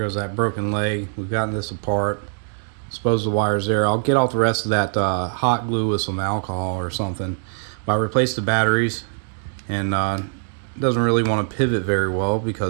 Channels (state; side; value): silent; left; digital silence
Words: that broken leg. We've gotten this apart. Suppose the wire's there. I'll get off the rest of that hot glue with some alcohol or something. But I replaced the batteries, and it doesn't really want to pivot very well